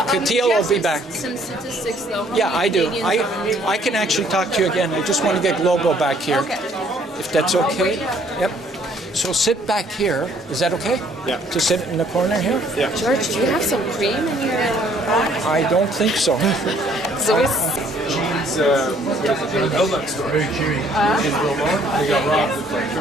Katia will be back. Some statistics though. Yeah, I do. I can actually talk to you again. I just want to get Global back here. Okay. If that's okay. Yep. So sit back here. Is that okay? Yeah. To sit in the corner here? Yeah. George, do you have some cream in your... I don't think so. So it's... He's in the Outlet store. Very cheery. In Vermont, they got robbed with like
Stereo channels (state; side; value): normal; both; correlation 0.62